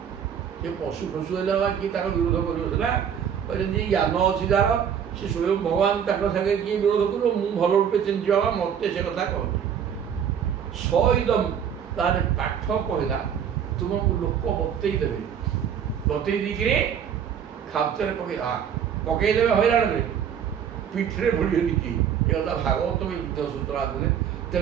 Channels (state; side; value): quieter; left; 8.2 dB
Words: ସେ ପଶୁ ଫଶୁ ହେଲେ ବା କିଏ ତାର ବିରୋଧ କରିବ ସିନା, ଯେମିତି ଜ୍ଞାନ ଅଛି ଯାହାର ସେ ସ୍ୱୟଂ ଭଗବାନ ତାଙ୍କ ସାଙ୍ଗେ କିଏ ବିରୋଧ କରିବ? ମୁଁ ଭଲ ରୂପେ ଚିହ୍ନିଛି ବାବା, ମୋତେ ସେ କଥା କହନ୍ତି। ସଇଦମ୍ ତାର ପାଠ କହିଲା ତୁମକୁ ଲୋକ ବତେଇ ଦେବେ, ବତେଇ ଦେଇକିରି ଖାପ୍ତରେ ପକେଇଦେବେ ହଇରାଣରେ, ପିଠିରେ ଭୁଳିବେନି କି ଏ କଥା ଭାଗବତ ଯୁଦ୍ଧ ସୂତ୍ର ଆଦିରେ।